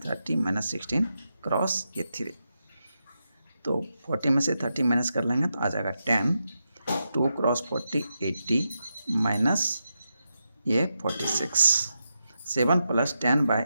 30 minus 16 cross ये 3। तो 40 में से 30 माइनस कर लेंगे तो आ जाएगा 10। 2 क्रॉस 40 80 माइनस ये 46। 7 प्लस 10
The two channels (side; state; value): both; inverted; correlation -0.87